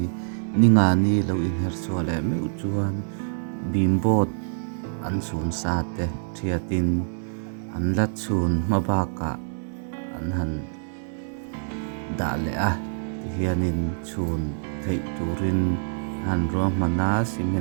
ninga ni lo in her chu le meu chuan bimbot an sun sa te thiatin an la chun mabaka an han da le a hianin chun thei turin han ro mana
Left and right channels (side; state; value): left; silent; 61 dB below the other